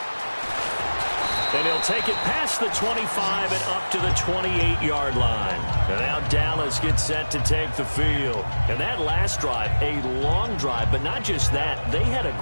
And he'll take it past the 25 and up to the 28-yard line. And now Dallas gets set to take the field. And that last drive, a long drive, but not just that. They had a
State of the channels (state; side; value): inverted; both; correlation -1.00